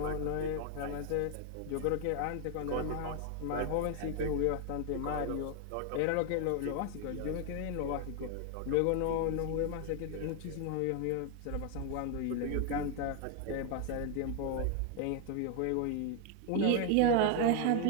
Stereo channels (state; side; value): different; both; correlation 0.00